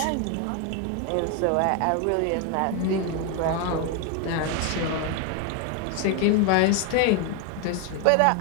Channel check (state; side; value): different; both; correlation 0.01